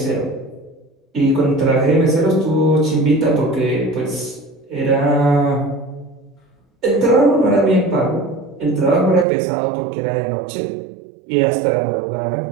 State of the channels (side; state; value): left; drops out; at 9.2 s